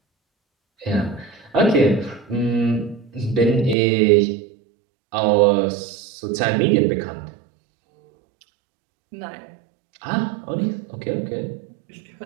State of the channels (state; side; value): drops out; left; at 3.8 s